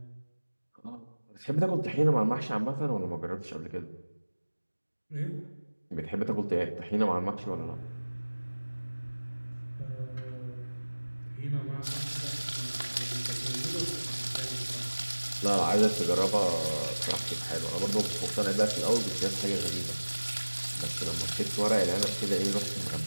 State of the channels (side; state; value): both; inverted; correlation -1.00